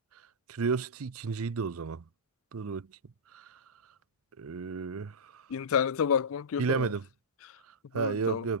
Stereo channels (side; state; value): both; normal; correlation -0.15